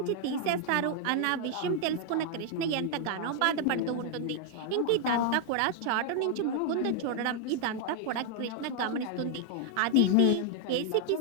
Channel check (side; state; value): both; different; correlation 0.00